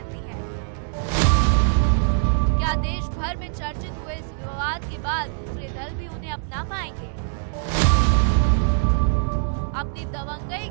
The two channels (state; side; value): silent; left; digital silence